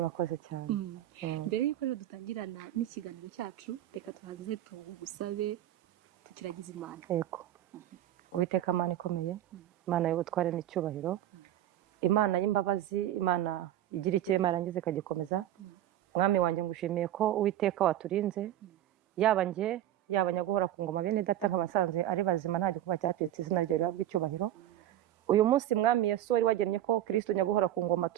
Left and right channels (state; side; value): quieter; left; 12.9 dB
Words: cyane. Mbere y'uko rero dutangirana n'ikiganiro cyacu, reka tuhaze tugusabe tukiragize Imana. Yego. Uwiteka Imana ikomeye, Imana y'ubutware n'icyubahiro, Imana y'imbabazi, Imana igira ikirema yarangiza ikagikomeza. Mwami wanjye ngushimiye ko Uwiteka waturinze, yaba njye yaba nyagora ku ngoma bene data nk'abasanze ari bazima nta gikuba cyatetse izina ryawe rihabwe icyubahiro. Uyu munsi Mwami Yesu wari wagennye ko Kristo nyaguhora ku ngoma